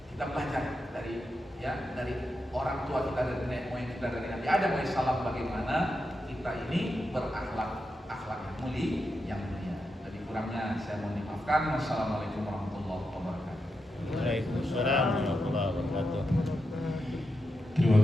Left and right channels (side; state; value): both; normal; correlation 0.87